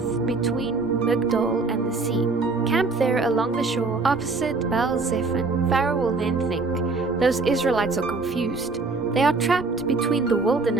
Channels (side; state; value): left; quieter; 3.8 dB